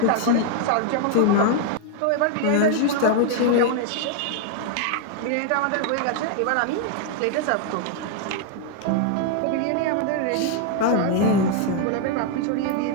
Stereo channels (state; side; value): different; both; correlation 0.00